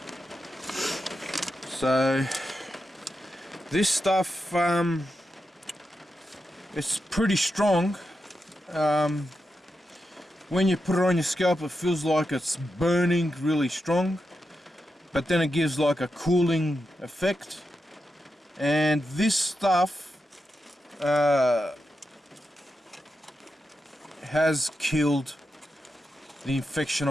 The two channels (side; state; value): both; normal; correlation 0.88